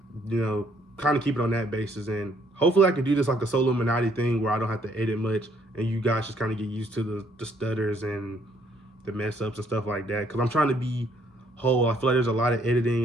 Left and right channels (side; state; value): both; normal; correlation 0.66